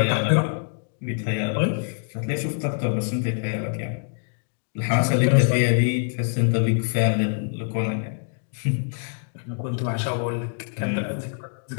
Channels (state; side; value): silent; right; digital silence